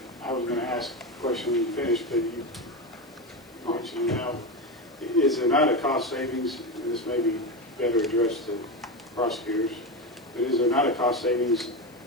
I was going to ask a question when you finished, but you mentioned now, is there not a cost savings, and this may be better addressed to prosecutors, but is there not a cost savings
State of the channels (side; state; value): left; noise; hiss, 29 dB below the sound